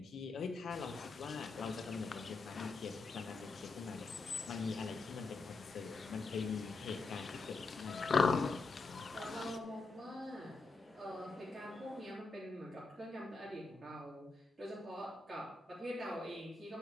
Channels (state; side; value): quieter; right; 3.7 dB